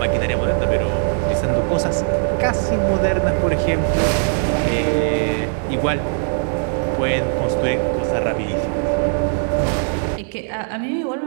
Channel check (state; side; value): silent; left; digital silence